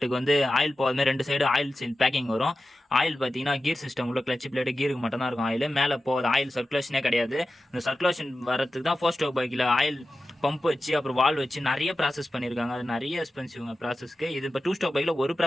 வந்து ஆயில் போகாத 2 சைடு ஆயில் சீல் பேக்கிங் வரும். ஆயில் பார்த்தீங்கன்னா கீர் சிஸ்டம் உள்ள கிளச் பிளேட்டு கீருக்கு மட்டும் தான் இருக்கும் ஆயில், மேலே போகாது. ஆயில் சர்க்குலேஷனே கிடையாது. இந்த சர்க்குலேஷன் வரதுக்கு தான் 4 ஸ்ட்ரோக் பைக்கில் ஆயில் பம்ப் வச்சு அப்புறம் வால் வச்சு நிறைய ப்ராசஸ் பண்ணியிருக்காங்க. அது நிறைய எக்ஸ்பென்சிவ்ங்க ப்ராசஸ்க்கு. இது இப்போ 2 ஸ்ட்ரோக் பைக்கில் ஒரு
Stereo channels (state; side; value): normal; both; correlation 0.93